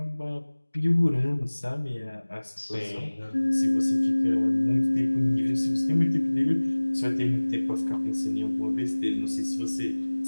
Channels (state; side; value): inverted; both; correlation -1.00